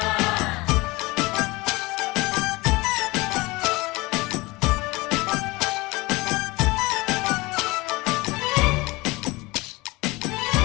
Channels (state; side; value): quieter; right; 22.6 dB